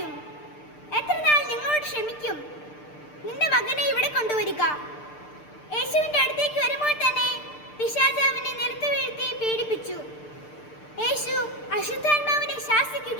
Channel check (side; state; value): right; late; 6.7 ms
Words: എത്ര നാൾ നിങ്ങളോട് ക്ഷമിക്കും? നിന്റെ മകനെ ഇവിടെ കൊണ്ടുവരിക. യേശുവിന്റെ അടുത്തേക്ക് വരുമ്പോൾ തന്നെ പിശാച് അവനെ നിലത്ത് വീഴ്ത്തി പീഡിപ്പിച്ചു. യേശു അശുദ്ധാത്മാവിനെ